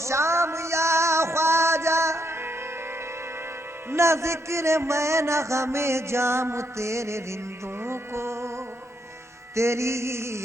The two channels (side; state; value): both; normal; correlation 0.77